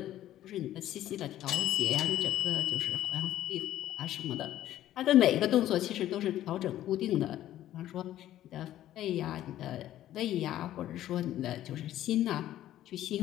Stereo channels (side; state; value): right; quieter; 13.0 dB